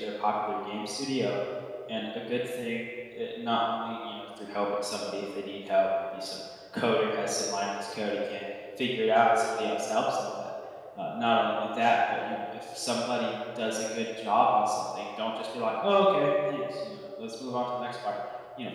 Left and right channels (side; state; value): both; identical; correlation 1.00